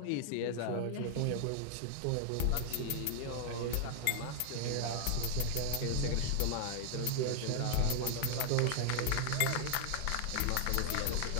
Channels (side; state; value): both; different; correlation -0.01